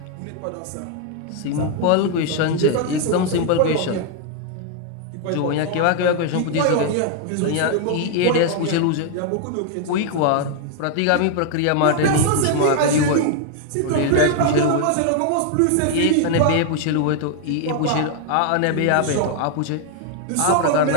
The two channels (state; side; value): different; both; correlation 0.00